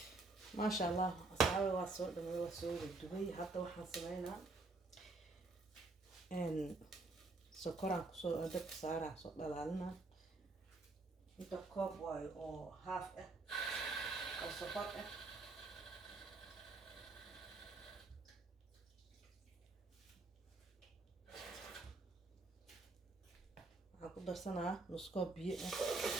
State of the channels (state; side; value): quieter; left; 3.4 dB